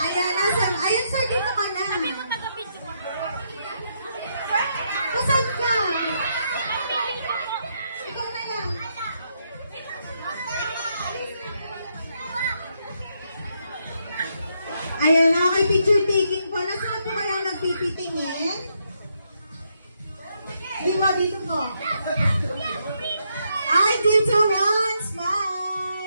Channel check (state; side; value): inverted; both; correlation -0.78